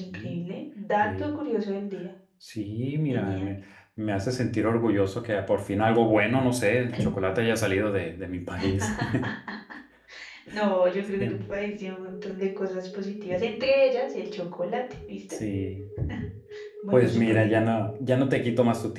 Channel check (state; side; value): identical; both; correlation 1.00